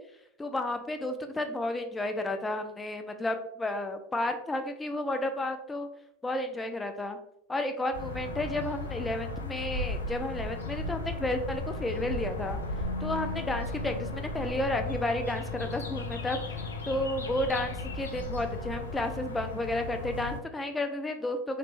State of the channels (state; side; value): normal; both; correlation 0.54